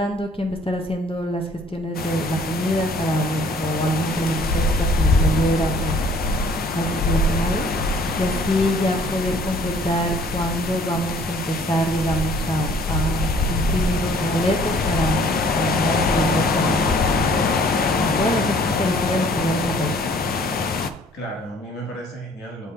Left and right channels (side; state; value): both; normal; correlation 0.57